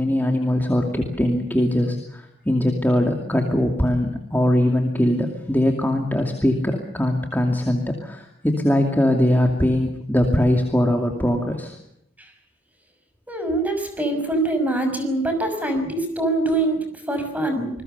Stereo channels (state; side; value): normal; both; correlation 0.83